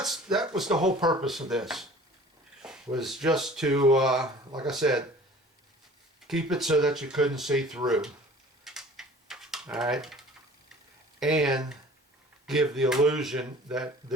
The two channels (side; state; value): both; normal; correlation 0.47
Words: was the whole purpose of this, was just to, like I said, keep it so that you couldn't see through. Alright? And give the illusion that